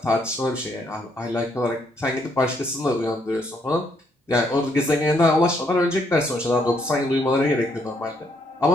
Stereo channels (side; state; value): both; normal; correlation 0.72